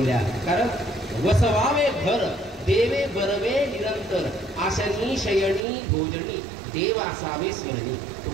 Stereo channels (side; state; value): left; drops out; at 5.7 s